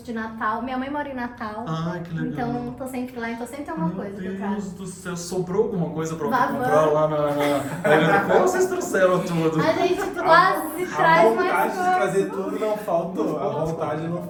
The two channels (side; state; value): both; identical; correlation 1.00